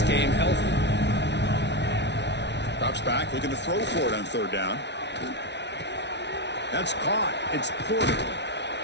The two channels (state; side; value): late; right; 0.50 ms